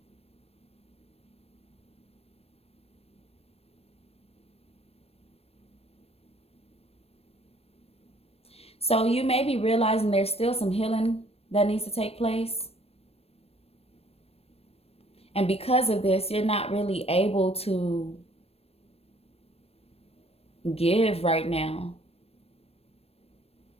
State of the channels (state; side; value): late; right; 0.29 ms